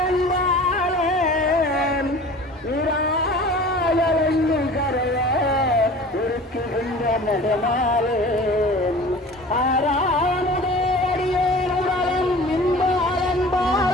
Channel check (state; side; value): normal; both; correlation 0.42